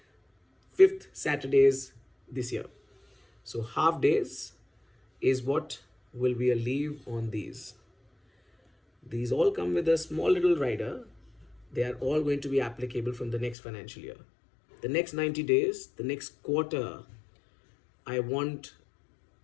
fifth Saturdays this year. So half days is what will be a leave on these. These all come with a small little rider. They are all going to be applicable from the next financial year. The next 90 days, the next quarter, I want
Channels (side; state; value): right; drops out; at 13.6 s